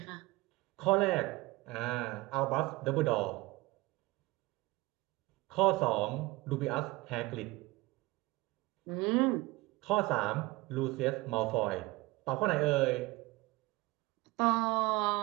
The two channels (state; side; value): quieter; left; 21.3 dB